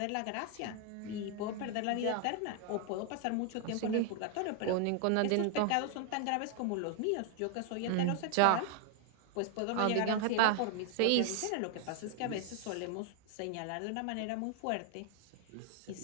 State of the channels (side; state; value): both; different; correlation 0.00